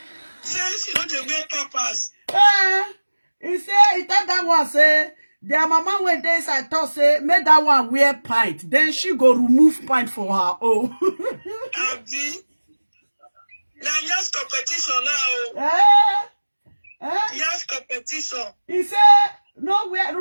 Say she don't wear papas. He tell that one say their mama went there inside thought say make that one wear pint. Then she go remove pint for her own. Abi. Now yes competition now. Yes competition. He say no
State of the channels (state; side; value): inverted; both; correlation -1.00